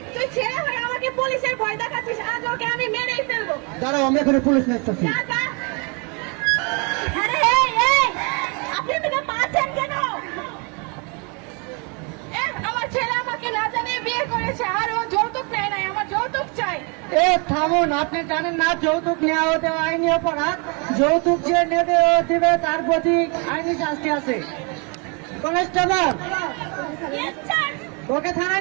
তুই ছেলে হয়ে আমাকে পুলিশের ভয় দেখাচ্ছিস? আজ ওকে আমি মেরেই ফেলবো। দাঁড়াও, আমি এখানে পুলিশ নেছি। যা যা। আরে এই এই, আপনি এদিকে পাচ্ছেন কেন? আমার ছেলে আমাকে না জানিয়ে বিয়ে করেছে আর ও যৌতুক নেয় নাই। আমার যৌতুক চাই। এ থামুন, আপনি জানেন না যৌতুক নেওয়া হতে আইনি অপরাধ? যৌতুক যে নেবে ও দিবে, তার প্রতি আইনি শাস্তি আছে। কনস্টেবল, ওকে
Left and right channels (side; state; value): left; quieter; 33.5 dB